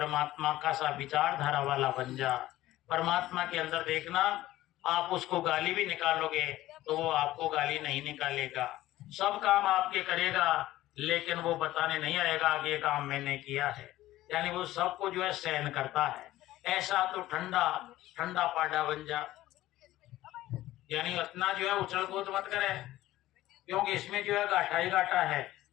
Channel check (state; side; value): quieter; right; 15.7 dB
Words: का सा विचारधारा वाला बन जा। परमात्मा के अंदर देखना, आप उसको गाली भी निकालोगे तो वो आपको गाली नहीं निकालेगा, सब काम आपके करेगा, लेकिन वो बताने नहीं आएगा कि ये काम मैंने किया है। यानी वो सबको जो है सहन करता है। ऐसा तो ठंडा ठंडा पाडा बन जा। यानी इतना जो है उछल कूद मत करे, क्योंकि इसमें जो है घाटा ही घाटा है।